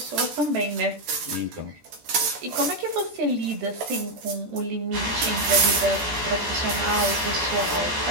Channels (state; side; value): late; left; 14 ms